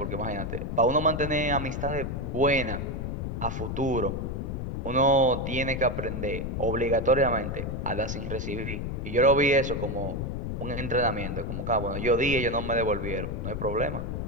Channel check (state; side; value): noise; left; rumble, 4 dB below the sound